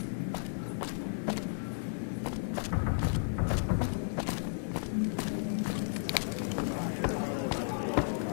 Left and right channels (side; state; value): right; silent; digital silence